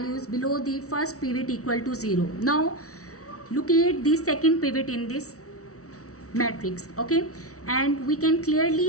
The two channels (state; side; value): late; right; 0.65 ms